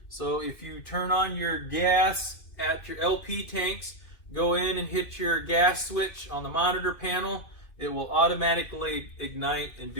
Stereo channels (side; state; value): right; late; 2.6 ms